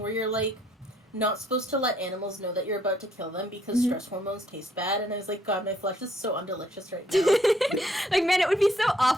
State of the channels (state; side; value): normal; both; correlation 0.67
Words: you're like, not supposed to let animals know that you're about to kill them because stress hormones taste bad, and I was like, god, my flesh is so undelicious right now. Like, man, it would be so